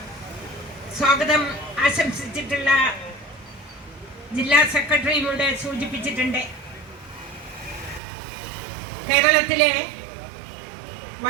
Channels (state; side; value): drops out; left; at 8.0 s